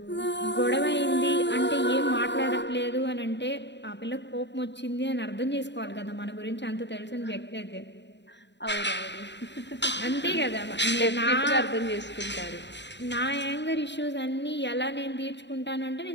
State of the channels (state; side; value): late; right; 0.51 ms